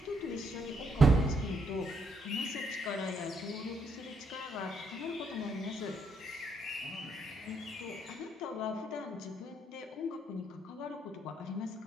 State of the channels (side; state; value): both; normal; correlation 0.74